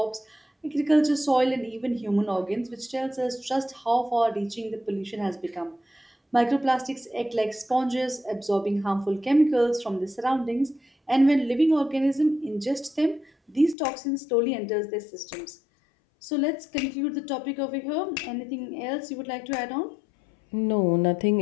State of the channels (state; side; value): drops out; right; at 13.8 s